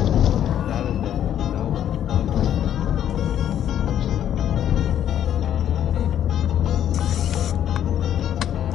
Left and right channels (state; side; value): quieter; right; 10.4 dB